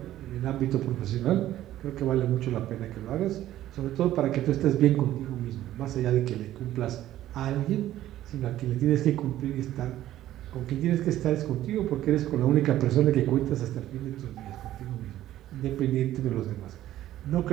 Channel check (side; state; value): left; quieter; 13.5 dB